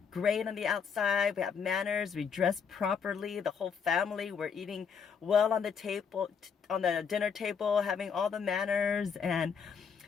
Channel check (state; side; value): quieter; right; 6.5 dB